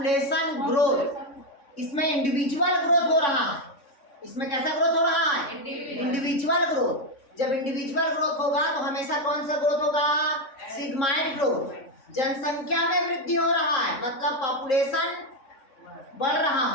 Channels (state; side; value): late; right; 3.6 ms